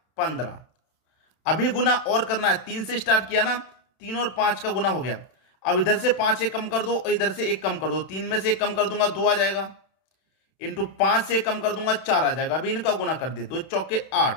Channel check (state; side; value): late; right; 31 ms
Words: 15। अभी गुना और करना है, 3 से स्टार्ट किया ना, 3 और 5 का गुना हो गया। अब इधर से 5 एक कम कर दो और इधर से 1 कम कर दो, 3 में से 1 कम कर दूंगा 2 आ जाएगा। इंटू 5 से कम कर दूंगा 4 आ जाएगा। अभी इनका गुना कर दिए, 2 चौके